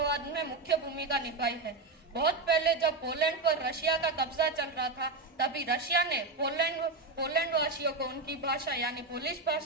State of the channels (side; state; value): left; quieter; 3.5 dB